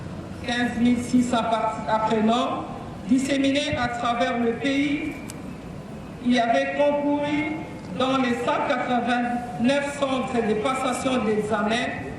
15 600 apprenants disséminés à travers le pays y avaient concouru dans les 189 centres de passation d'examen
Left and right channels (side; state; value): both; identical; correlation 1.00